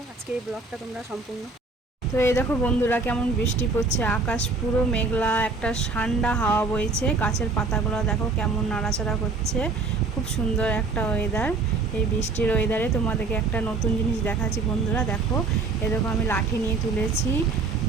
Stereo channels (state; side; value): quieter; left; 3.9 dB